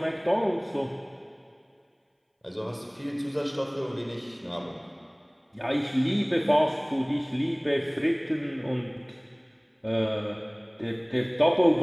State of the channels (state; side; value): identical; both; correlation 1.00